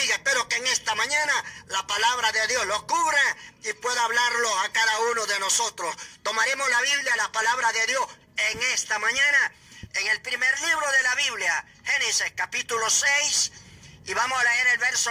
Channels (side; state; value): both; identical; correlation 1.00